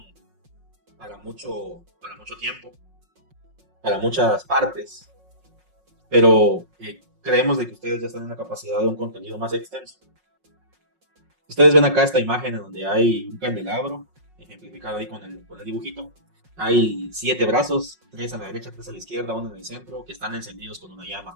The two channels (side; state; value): left; late; 5.5 ms